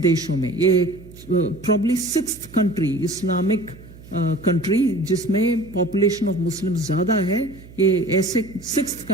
में, ये probably 6th country, Islamic country जिसमें पॉपुलेशन ऑफ मुस्लिम ज़्यादा है, ये ऐसे 6th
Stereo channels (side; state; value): right; noise; hum, 19 dB below the sound